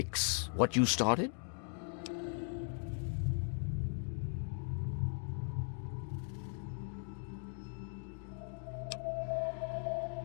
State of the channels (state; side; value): silent; right; 52 dB below the other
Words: what you started?